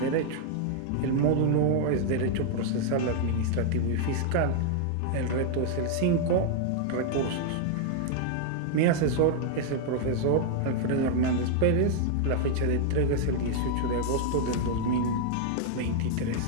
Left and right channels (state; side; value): different; both; correlation 0.00